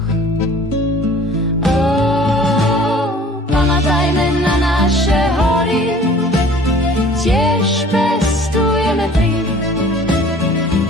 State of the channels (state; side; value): normal; both; correlation 0.50